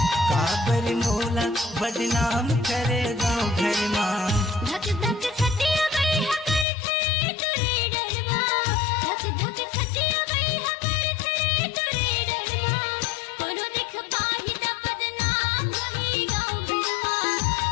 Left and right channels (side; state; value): right; drops out; at 6.7 s